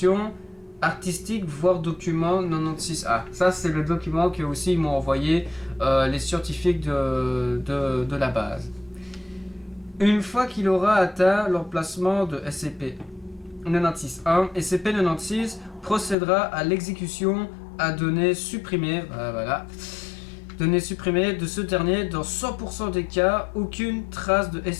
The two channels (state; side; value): drops out; right; at 16.2 s